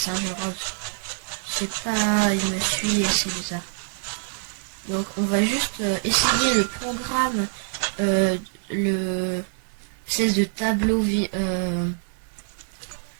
rose. Je sais pas, il me suit et c'est bizarre. Donc, on va juste essayer le programme, le espèce de tableau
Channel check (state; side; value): silent; left; 62 dB below the other